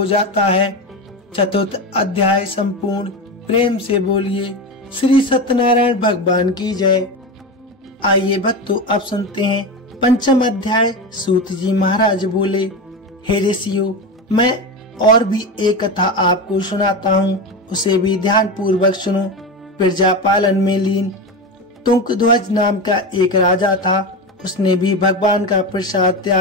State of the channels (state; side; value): normal; both; correlation 0.20